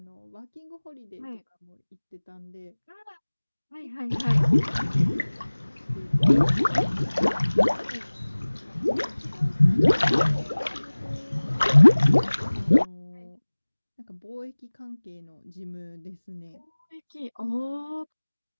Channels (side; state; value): both; inverted; correlation -1.00